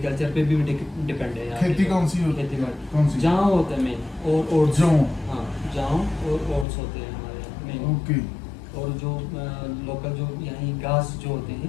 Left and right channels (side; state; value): right; drops out; at 6.7 s